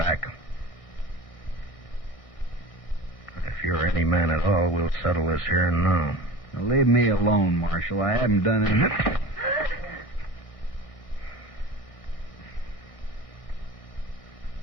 If you're any man at all, we'll settle this here and now. Now, leave me alone, Marshal. I haven't done anything.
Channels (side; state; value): right; late; 1.6 ms